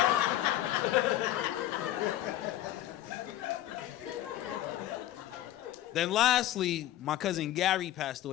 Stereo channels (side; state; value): right; quieter; 13.7 dB